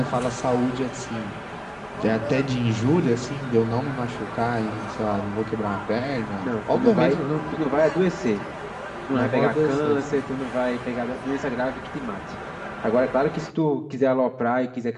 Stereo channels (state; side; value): identical; both; correlation 1.00